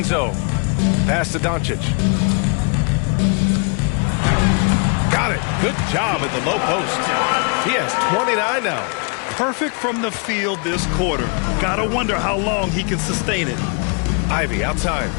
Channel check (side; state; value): right; quieter; 37.3 dB